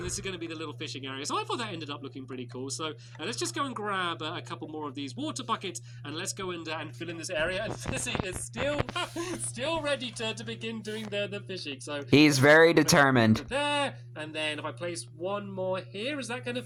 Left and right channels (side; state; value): both; identical; correlation 1.00